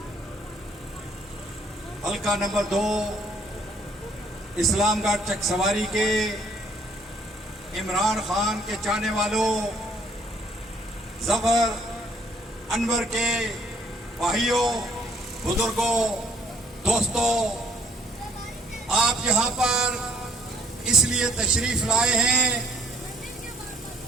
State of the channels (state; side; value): normal; both; correlation 0.62